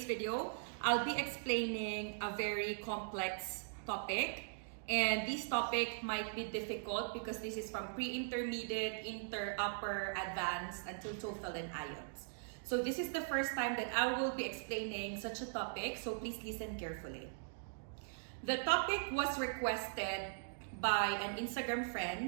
video, I'll be explaining a very complex topic, and this topic might be difficult because this is from pre-intermediate, inter, upper, advanced until TOEFL and IELTS. So this is the first time that I will be explaining such a topic, so please listen carefully. The topic was requested by an Instagram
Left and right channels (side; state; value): left; silent; digital silence